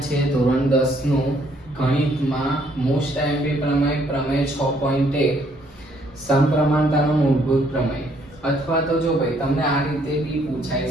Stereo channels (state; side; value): normal; both; correlation 0.67